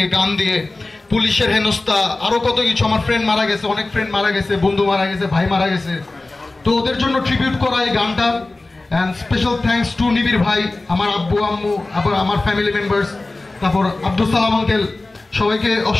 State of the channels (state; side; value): quieter; right; 3.1 dB